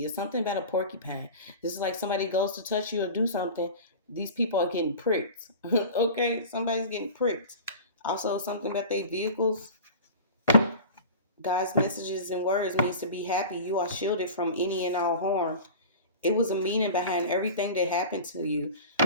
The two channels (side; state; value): both; inverted; correlation -0.35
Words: It's something about a porcupine. This is like somebody goes to touch you or do something. These people are getting pricked. Okay, somebody's getting pricked. Also, something about their vehicles. God's messages and words means to be happy. You are shielded from any and all harm. It was a meaning behind everything that happened to you,